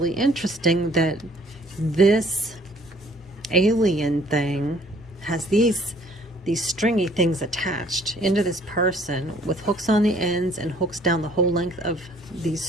interesting, that this alien thing has these these stringy things attached into this person with hooks on the ends and hooks down the whole length of these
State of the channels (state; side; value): normal; both; correlation 0.58